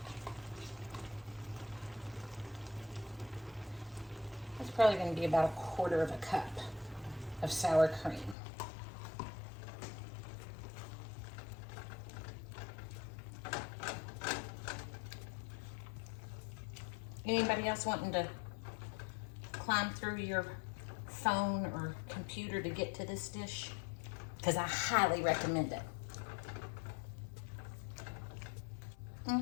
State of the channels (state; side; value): drops out; right; at 8.3 s